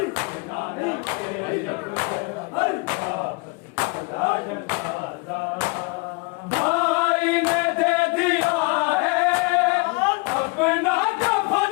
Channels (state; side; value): quieter; right; 29.5 dB